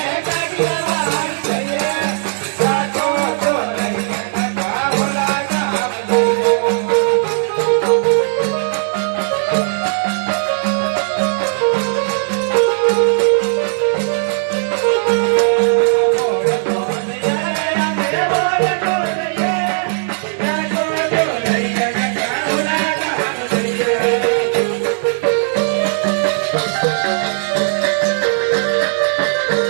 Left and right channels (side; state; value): left; silent; digital silence